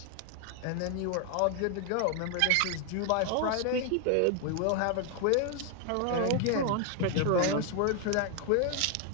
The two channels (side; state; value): both; different; correlation 0.00